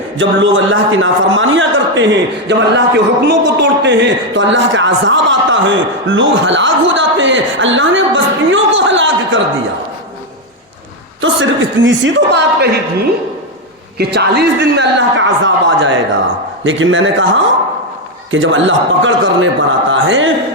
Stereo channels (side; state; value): both; normal; correlation 0.05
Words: जब लोग अल्लाह की नाफरमानियां करते हैं, जब अल्लाह के हुक्मों को तोड़ते हैं तो अल्लाह का अज़ाब आता है, लोग हलाक हो जाते हैं। अल्लाह ने बस्तियों को हलाक कर दिया। तो सिर्फ इतनी सी तो बात कही थी कि 40 दिन में अल्लाह का अज़ाब आ जाएगा। लेकिन मैंने कहा कि जब अल्लाह पकड़ करने पर आता